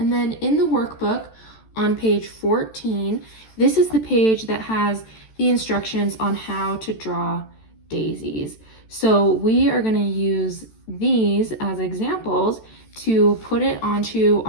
then in the workbook on page 14, this is the page that has the instructions on how to draw daisies. So we are going to use these as examples to put it onto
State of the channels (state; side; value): late; right; 14 ms